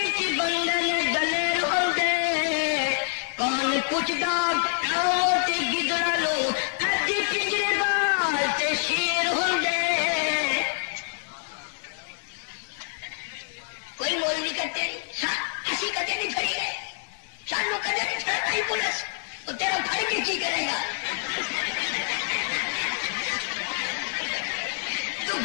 کے بندے نے ڈلے روندے، کون پوچھدا کاؤ تے گدڑ لو اج پجرے بال تے شیر ہوندے۔ کوئی مول نہیں کرتے، اسی کدے نہیں پھڑی گئے، سانو کدے نہیں پھڑائی پولیس، وہ تیرا پھڑ کے کی کرے گا؟ تو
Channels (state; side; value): silent; right; digital silence